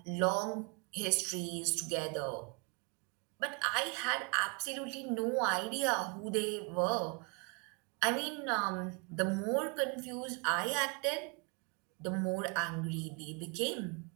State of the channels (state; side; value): quieter; left; 33.2 dB